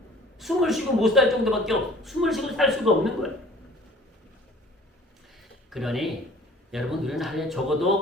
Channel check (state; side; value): normal; both; correlation 0.50